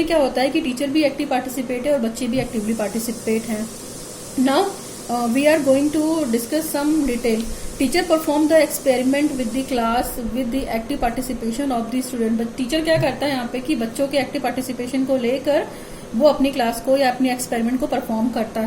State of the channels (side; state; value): both; identical; correlation 1.00